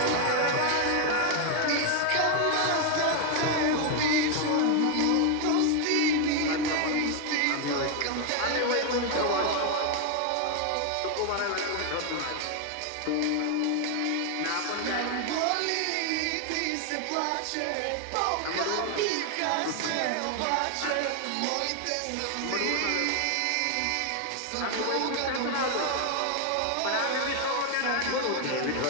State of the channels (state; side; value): different; both; correlation 0.01